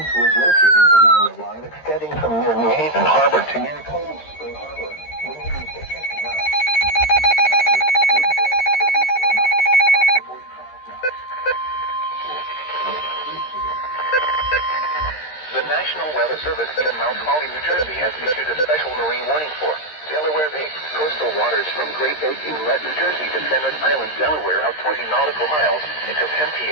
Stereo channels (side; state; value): right; late; 13 ms